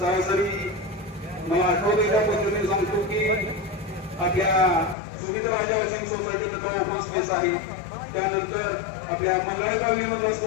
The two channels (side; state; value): right; drops out; at 5.0 s